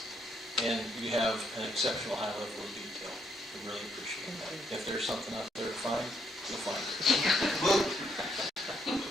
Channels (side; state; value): both; normal; correlation 0.73